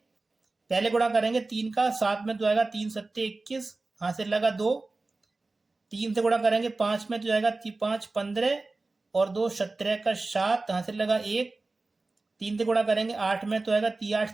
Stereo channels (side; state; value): left; quieter; 3.4 dB